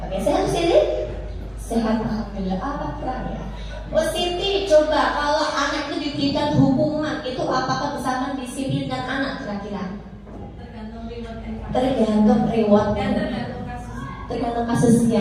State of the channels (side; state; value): both; identical; correlation 1.00